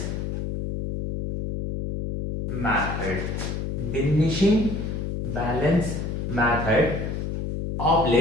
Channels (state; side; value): noise; left; hum, 3 dB below the sound